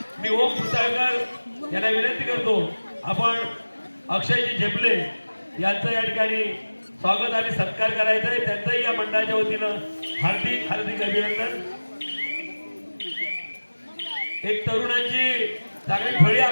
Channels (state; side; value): inverted; both; correlation -1.00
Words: मी ओम पुसाळकर यांना विनंती करतो आपण अक्षयजी झेपले यांचं या ठिकाणी स्वागत आणि सत्कार करायचा आहे. त्यांचंही या मंडळाच्या वतीनं हार्दिक हार्दिक अभिनंदन. एक तरुणांची चांगली फळी